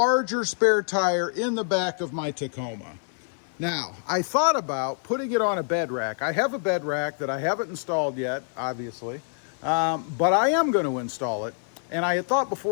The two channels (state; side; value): silent; right; digital silence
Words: spare tire in the back of my Tacoma. Now, I thought about putting it on a bed rack. I have a bed rack that I haven't installed yet, obviously, but I am going to install it. And I had thought